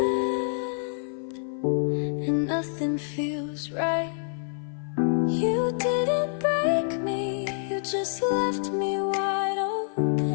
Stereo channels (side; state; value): right; silent; 55 dB below the other